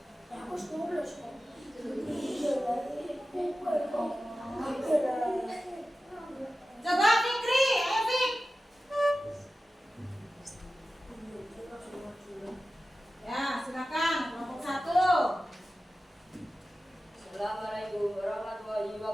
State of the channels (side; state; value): both; normal; correlation 0.94